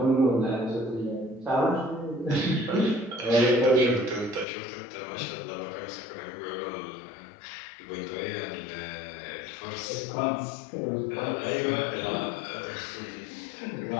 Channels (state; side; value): drops out; right; at 4.5 s